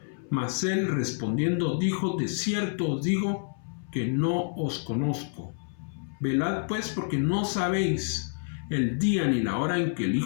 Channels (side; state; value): right; silent; 59 dB below the other